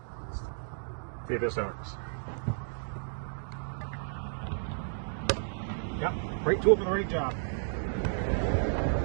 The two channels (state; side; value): silent; left; digital silence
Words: See if this works. Yep, right tool for the right job.